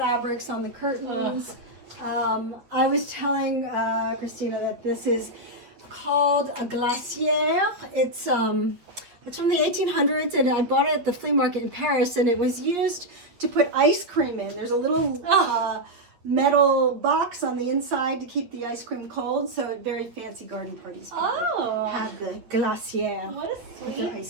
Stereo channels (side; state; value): left; late; 8.5 ms